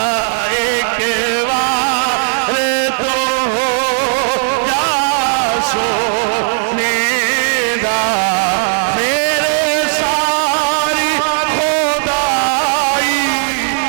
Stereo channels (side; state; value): left; silent; 69 dB below the other